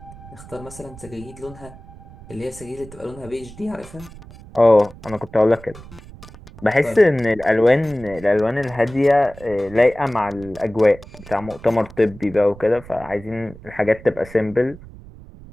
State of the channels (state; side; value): noise; right; rumble, 18 dB below the sound